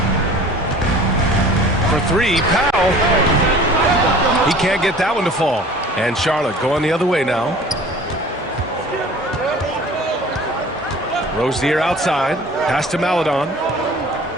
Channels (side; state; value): both; normal; correlation 0.46